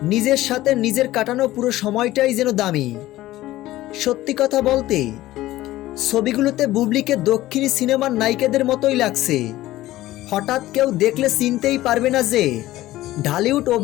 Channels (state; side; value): quieter; right; 16.0 dB